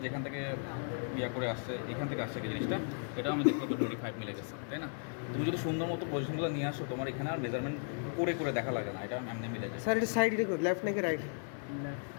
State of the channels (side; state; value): right; silent; 54 dB below the other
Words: যেখান থেকে ইয়া করে আসছে এখান থেকে আসছে কি জিনিসটা, এটাও আমি দেখলাম তো 25 মিলে গেছে, তাই না? তুমি যদি সুন্দর মতো পজিশনগুলো নিয়ে আসো তোমার এখানে আর মেজারমেন্ট করে করে দেখা লাগে না, এটা এমনি মিলে যায়। স্যার এটা সাইড রেকর্ড লেফট নাকি রাইট?